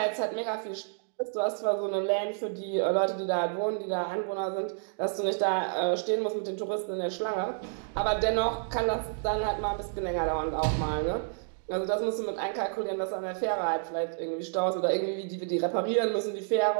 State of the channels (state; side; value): silent; left; digital silence